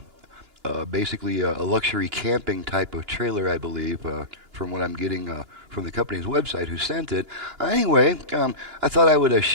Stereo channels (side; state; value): left; late; 2.9 ms